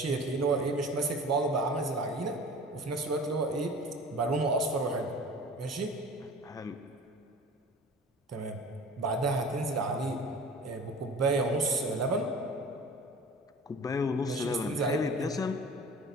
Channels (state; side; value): normal; both; correlation 0.41